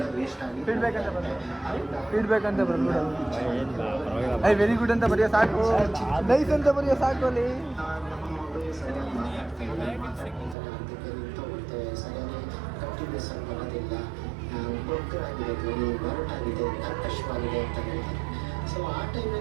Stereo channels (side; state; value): left; drops out; at 10.6 s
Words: ಫೀಡ್ಬ್ಯಾಕ್ ಅಂತ ಬಂದ್ಬಿಡು ಐ ವೆರಿ ಗುಡ್ ಅಂತ ಬರೆಯೋ ಸಾಕು ನೈಸ್ ಅಂತ ಬರೆಯೋ ಸಾಕು ಅಲ್ಲಿ